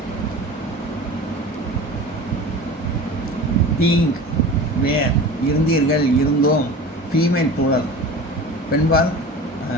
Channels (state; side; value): normal; both; correlation 0.36